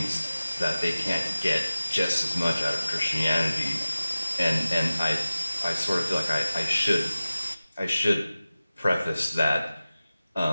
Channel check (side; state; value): both; inverted; correlation -0.96